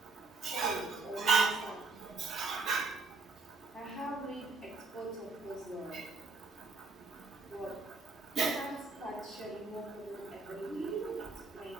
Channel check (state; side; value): quieter; left; 3.9 dB